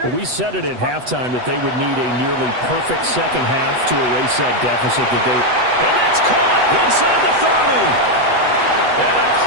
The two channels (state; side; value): late; left; 8.0 ms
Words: Well, we said it at halftime that they would need a nearly perfect second half to erase that deficit that they... And that's caught inside the 30. And